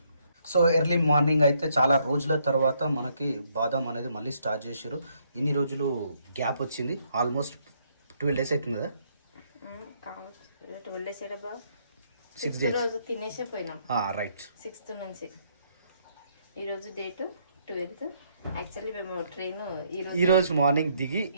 సో ఎర్లీ మార్నింగ్ అయితే చాలా రోజుల తర్వాత మనకి బాదం అనేది మళ్ళీ స్టార్ట్ చేసారు. ఇన్ని రోజులు గ్యాప్ వచ్చింది, ఆల్మోస్ట్ 12 days అవుతుంది కదా. 12 days 6 days రోజు తినేసే పోయినాం. రైట్. 6th నుంచి ఈరోజు డేట్ 12th. యాక్చువల్లీ మేము ట్రైన్ ఈ రోజు మార్నింగ్ దిగి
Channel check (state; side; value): inverted; both; correlation -0.71